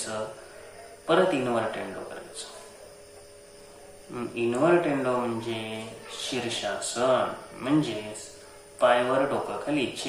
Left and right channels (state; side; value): identical; both; correlation 1.00